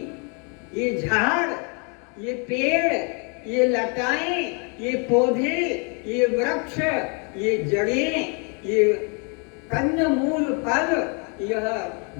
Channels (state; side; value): quieter; right; 36.3 dB